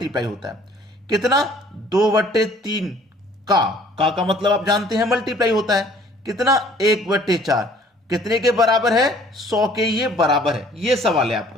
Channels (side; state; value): both; normal; correlation 0.56